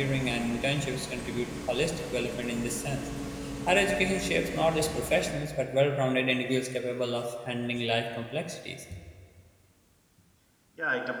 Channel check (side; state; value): both; identical; correlation 1.00